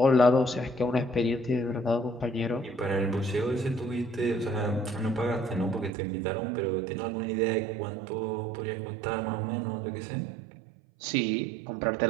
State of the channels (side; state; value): left; drops out; at 5.9 s